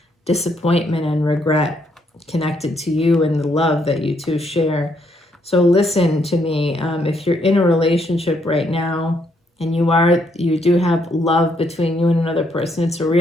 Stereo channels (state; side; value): normal; both; correlation 0.73